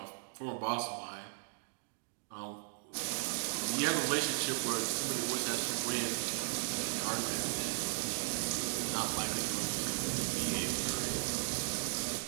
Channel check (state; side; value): silent; left; digital silence